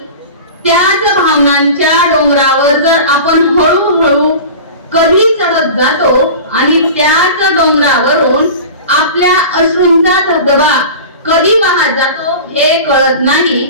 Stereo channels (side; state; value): both; inverted; correlation -0.35